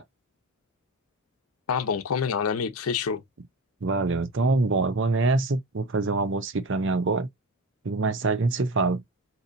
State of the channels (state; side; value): normal; both; correlation 0.25